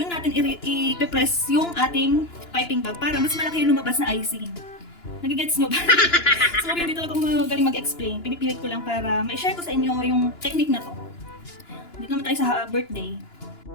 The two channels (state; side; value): late; right; 2.9 ms